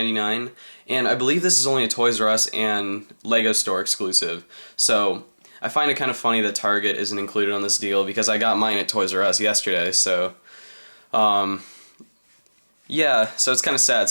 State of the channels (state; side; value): inverted; both; correlation -1.00